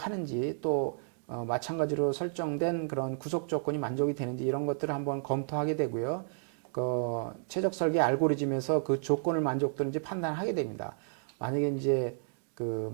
또 마찬가지로 설정된 그런 구속 조건이 만족이 되는지 이런 것들을 한번 검토하게 되고요. 그 최적 설계 알고리즘에서 그 조건을 만족도는지 판단하게 됩니다. 만약에 이제 그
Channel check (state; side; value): silent; left; digital silence